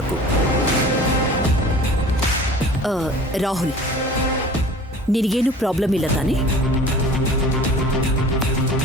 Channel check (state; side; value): normal; both; correlation 0.44